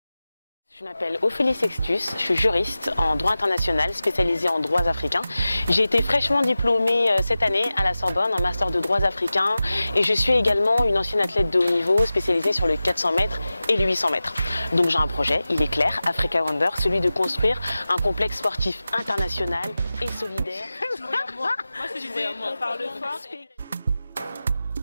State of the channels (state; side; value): inverted; both; correlation -0.95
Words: Je m'appelle Ophélie Sextus, je suis juriste en droit international spécialisée en droits africains. J'ai été fraîchement diplômée cette année à la Sorbonne en master de droits africains et je suis également une ancienne athlète de haut niveau spécialisée sur le 400 mètres et le 800 mètres. Donc j'ai un projet, il est clair, Africa Wonder, celui de construire un complexe sportif international et solidaire. Moi, je disais, on parle fort.